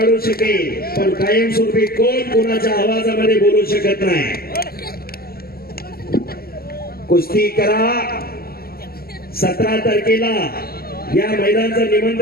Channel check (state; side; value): late; right; 0.44 ms